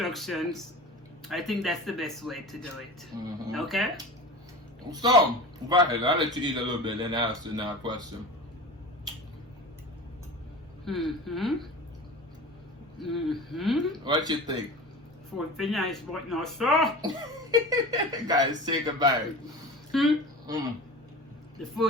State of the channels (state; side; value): normal; both; correlation 0.34